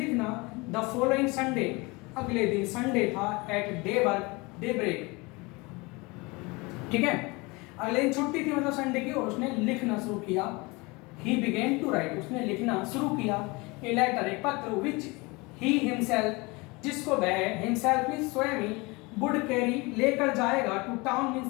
द फॉलोइंग संडे, अगले दिन संडे था, एट डे ब्रेक, ठीक है, अगले दिन छुट्टी थी मतलब संडे की, और उसने लिखना शुरू किया। ही बिगेन टू राइट, उसने लिखना शुरू किया। ए लेटर, एक पत्र, विच ही हिमसेल्फ, जिसको वह हिमसेल्फ मीन्स स्वयं ही, वुड कैरी, लेकर जाएगा, टू टाउन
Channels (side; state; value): right; quieter; 25.5 dB